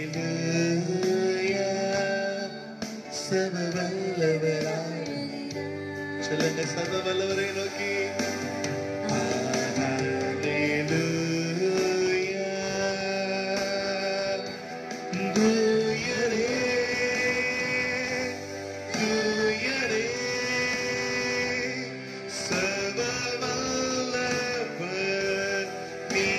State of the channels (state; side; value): identical; both; correlation 1.00